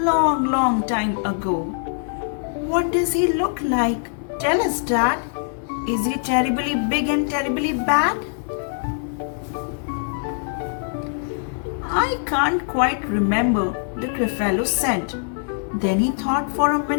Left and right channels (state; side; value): silent; right; 64 dB below the other